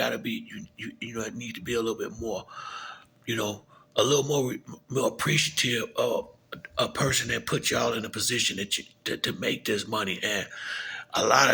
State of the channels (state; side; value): identical; both; correlation 1.00